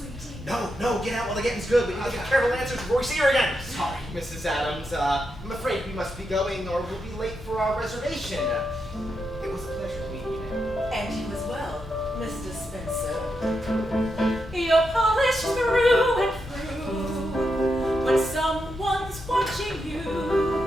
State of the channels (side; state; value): both; normal; correlation 0.84